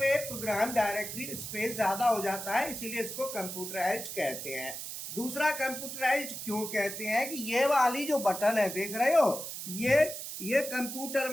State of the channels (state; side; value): noise; right; hiss, 7 dB below the sound